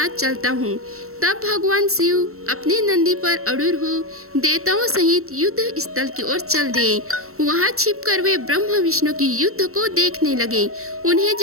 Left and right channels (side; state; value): left; late; 0.63 ms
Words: चलता हूँ। तब भगवान शिव अपने नंदी पर अड़ूर हो देवताओं सहित युद्ध स्थल की ओर चल दिए। वहाँ छिपकर वे ब्रह्मा विष्णु की युद्ध को देखने लगे। उन्हें